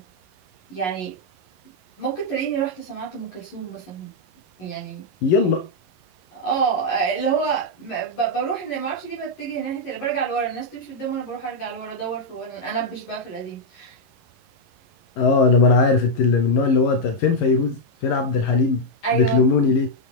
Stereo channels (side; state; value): right; late; 11 ms